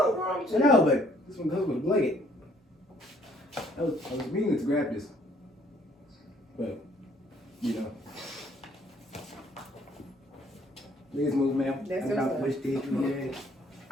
wrong with I you? know, but this one goes with a blanket. I was meaning to grab this. But, you know. Please move, ma'am. That's I got what's up. which did you get?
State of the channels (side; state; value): both; normal; correlation 0.63